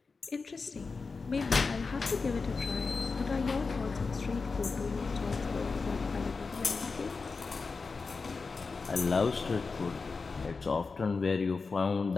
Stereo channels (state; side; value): quieter; right; 4.4 dB